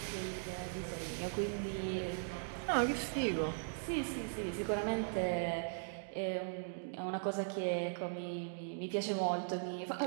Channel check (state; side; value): silent; left; digital silence